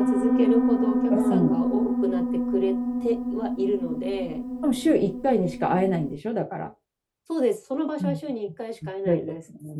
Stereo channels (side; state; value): both; identical; correlation 1.00